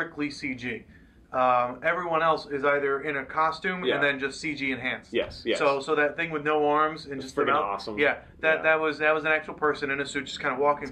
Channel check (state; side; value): identical; both; correlation 1.00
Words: CG. Everyone else is either in a costume and then just CG enhanced. Yes. So that thing with no arms and just freaking awesome. Yeah, that was an actual person in a suit just kind of walking. It's